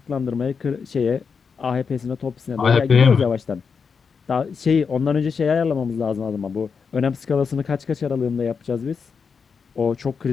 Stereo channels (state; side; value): quieter; right; 5.8 dB